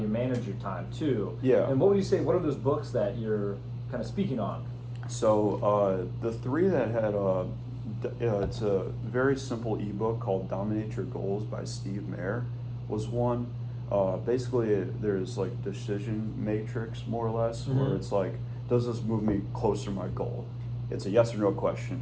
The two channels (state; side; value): identical; both; correlation 1.00